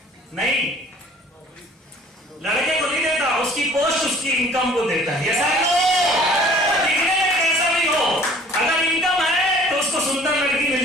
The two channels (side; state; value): both; normal; correlation 0.52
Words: नहीं, लड़के को नहीं देता, उसकी पोस्ट उसकी इनकम को देता है। ऐसा दिखने में कैसा भी हो, अगर इनकम है